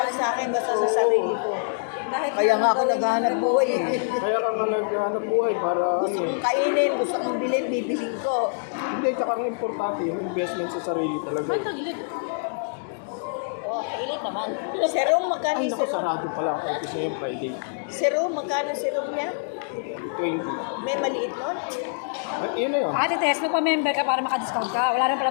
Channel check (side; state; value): right; silent; digital silence